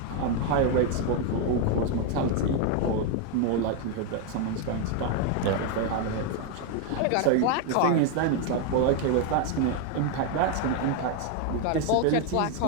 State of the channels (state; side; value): different; both; correlation 0.01